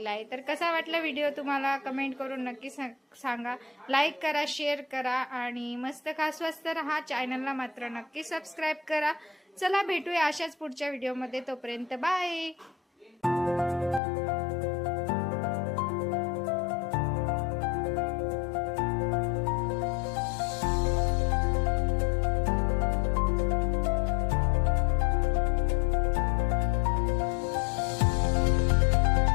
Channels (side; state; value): right; drops out; at 14.0 s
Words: आहे। तर कसा वाटला व्हिडिओ तुम्हाला कमेंट करून नक्की सांगा। लाईक करा, शेअर करा आणि मस्त खा, स्वस्त रहा। चॅनलला मात्र नक्की सबस्क्राईब करा। चला भेटूया अशाच पुढच्या व्हिडिओमध्ये, तोपर्यंत बाय।